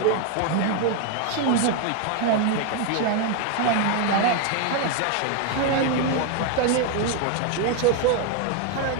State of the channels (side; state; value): both; different; correlation 0.01